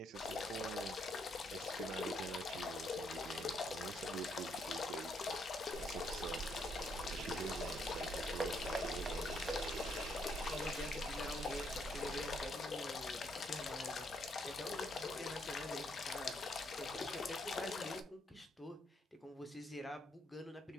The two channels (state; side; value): normal; both; correlation 0.73